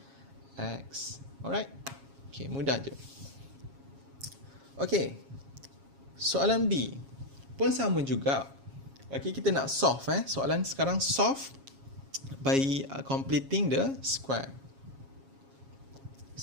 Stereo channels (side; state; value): left; late; 7.3 ms